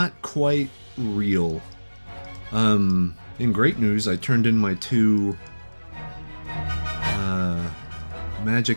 quite real. In great news, I turned in my 2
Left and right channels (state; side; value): inverted; both; correlation -1.00